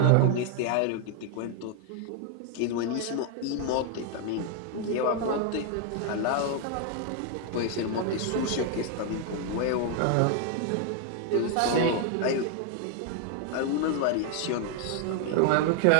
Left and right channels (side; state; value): both; different; correlation 0.00